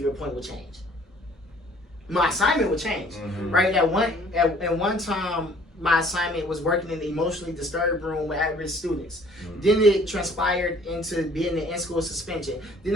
point, will change. My assignment would change, right? At one time, my assignment was working in the emotionally disturbed room with at-risk students. Then it transpired into being the in-school suspension. Then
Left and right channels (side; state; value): both; normal; correlation 0.55